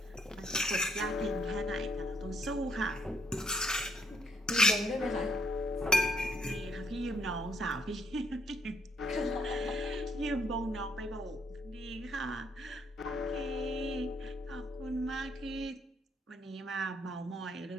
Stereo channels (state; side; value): normal; both; correlation 0.72